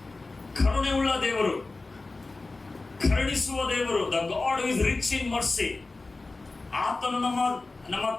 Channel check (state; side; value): quieter; right; 3.4 dB